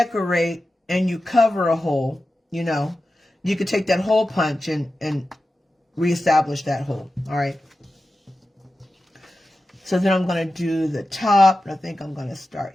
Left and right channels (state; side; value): normal; both; correlation 0.93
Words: and you cover a hole, you know, you could take that hole punch and reestablish that hole. All right. So then I'm going to do the top. I think I'm going to start